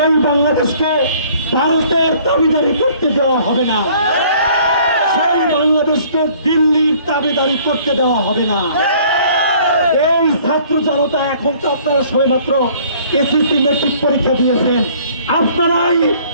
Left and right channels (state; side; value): inverted; both; correlation -0.56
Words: বাংলাদেশকে ভারতের দাবিদারি করতে দেওয়া হবে না, সেই বাংলাদেশকে দিল্লির দাবিদারি করতে দেওয়া হবে না। এই ছাত্র জনতা, এখন তো আপনারা সবেমাত্র এসএসসি মেট্রিক পরীক্ষা দিয়েছেন, আপনারাই